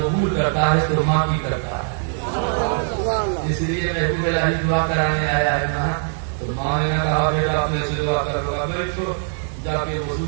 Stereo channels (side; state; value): left; silent; digital silence